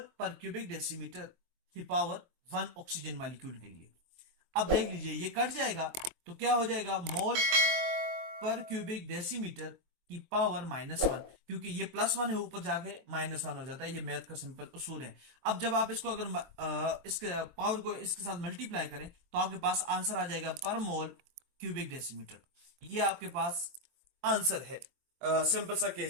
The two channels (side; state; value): left; late; 23 ms